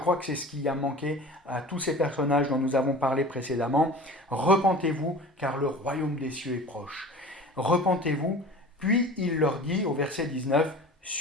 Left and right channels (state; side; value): normal; both; correlation 0.39